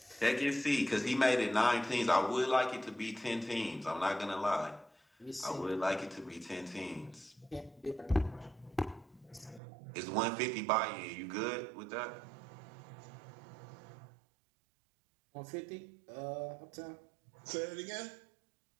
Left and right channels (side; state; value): left; drops out; at 9.6 s